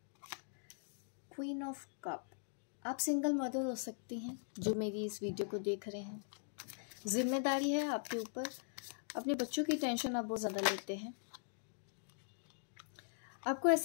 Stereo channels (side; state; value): right; silent; digital silence